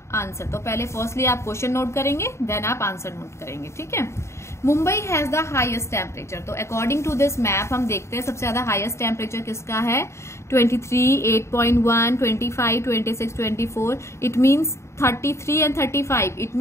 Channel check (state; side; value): late; right; 0.13 ms